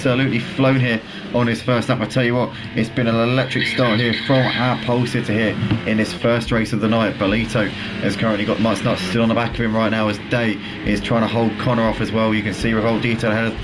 flown here on his first lap. I tell you what, it's been an electric start here from our pole sitter here in this first race of the night. Bolito has currently got Mutts Nuts still on the back of him right now, as Day is trying to hold Connor off as well. You can see Revolt Detail ahead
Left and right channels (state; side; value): identical; both; correlation 1.00